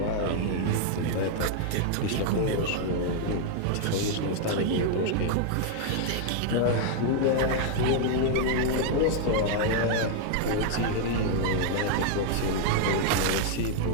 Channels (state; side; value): different; both; correlation 0.00